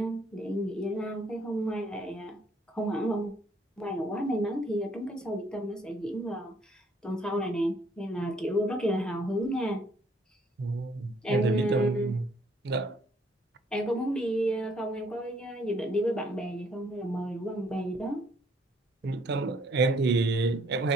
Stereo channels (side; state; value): both; normal; correlation 0.65